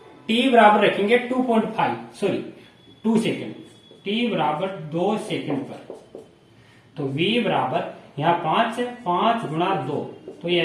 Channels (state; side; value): identical; both; correlation 1.00